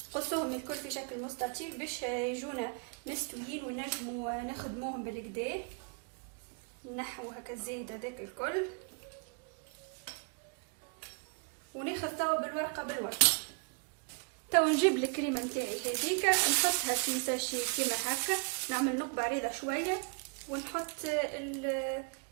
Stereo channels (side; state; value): left; quieter; 36.6 dB